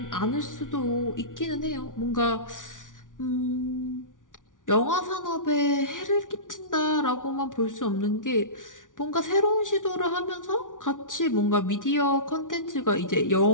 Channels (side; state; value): right; late; 0.88 ms